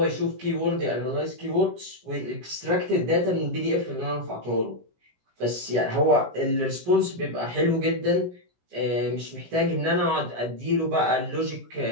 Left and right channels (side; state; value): left; late; 17 ms